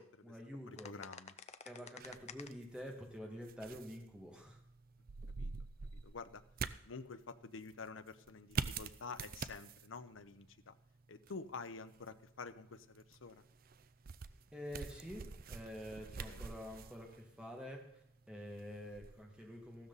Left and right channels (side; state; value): both; normal; correlation 0.50